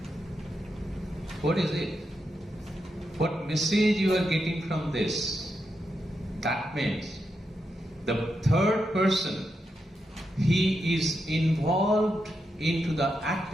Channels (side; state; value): both; normal; correlation 0.85